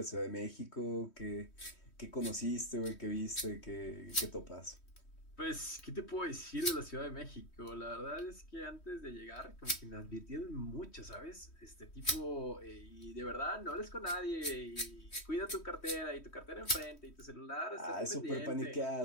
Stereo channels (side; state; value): right; late; 3.1 ms